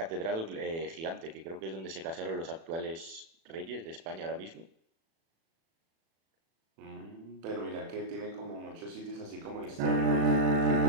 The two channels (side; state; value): left; late; 36 ms